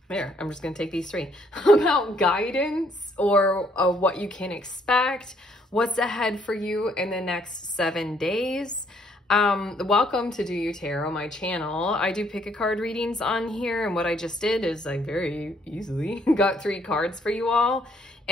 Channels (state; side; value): normal; both; correlation 0.67